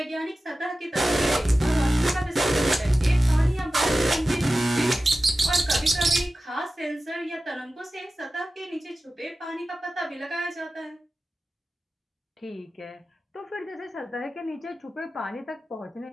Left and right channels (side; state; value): both; normal; correlation 0.95